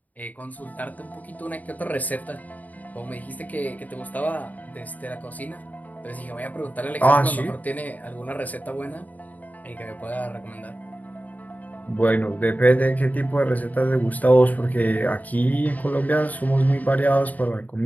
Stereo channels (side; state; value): right; late; 0.077 ms